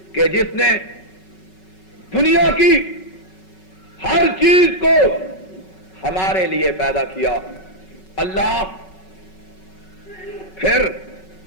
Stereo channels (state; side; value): late; right; 5.3 ms